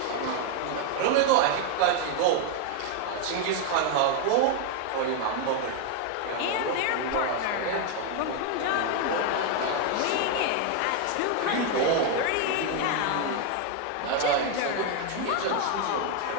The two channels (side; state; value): both; different; correlation 0.01